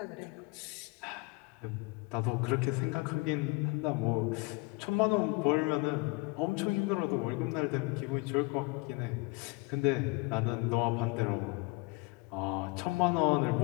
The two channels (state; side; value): quieter; right; 26.0 dB